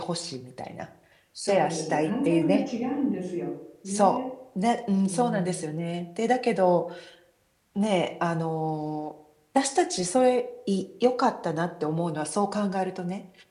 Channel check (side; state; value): both; identical; correlation 1.00